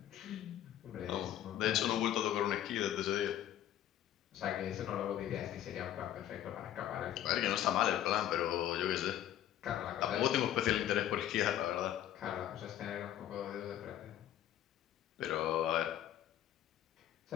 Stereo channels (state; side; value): quieter; right; 11.8 dB